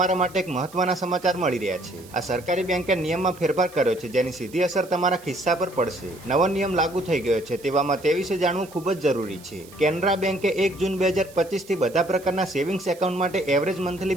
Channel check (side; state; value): right; noise; hiss, 22 dB below the sound